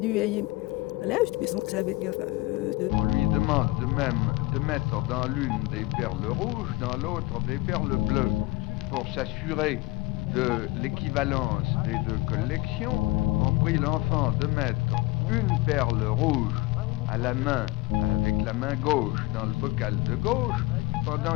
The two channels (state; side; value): quieter; right; 20.2 dB